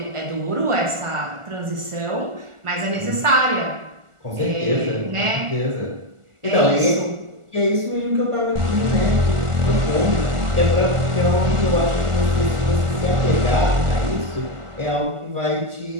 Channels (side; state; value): left; late; 1.4 ms